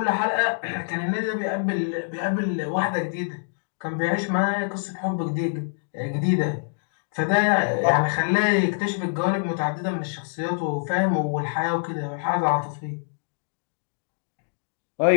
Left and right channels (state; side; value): silent; right; digital silence